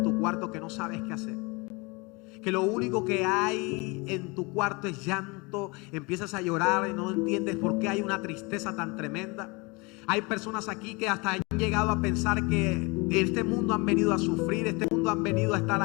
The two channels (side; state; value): right; quieter; 27.3 dB